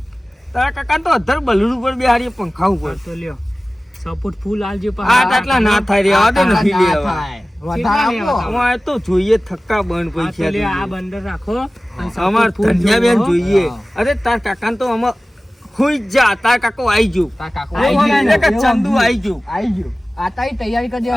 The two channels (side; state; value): both; normal; correlation 0.97